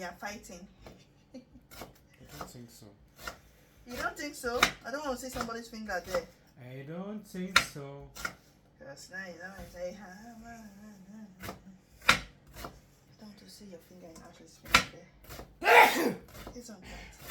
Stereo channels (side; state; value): both; identical; correlation 1.00